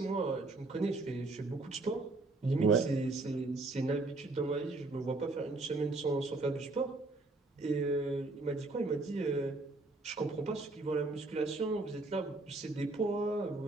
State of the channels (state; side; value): quieter; left; 3.2 dB